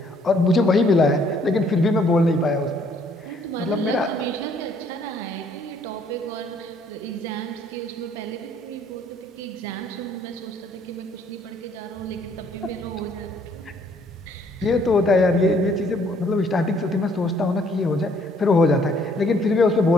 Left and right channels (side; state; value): both; normal; correlation 0.64